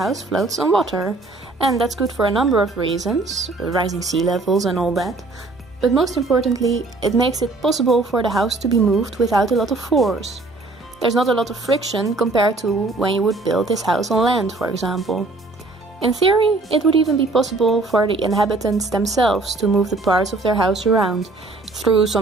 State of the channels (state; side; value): quieter; left; 3.3 dB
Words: floats on water. And that's good for a number of reasons, rising sea levels and all that. But most importantly, it makes it possible for the house to be moved without a lot of force. There's not a lot of friction compared to when you would build this house on land, for example. In theory, it would even be possible for the inhabitants themselves to move the parts of their house around, through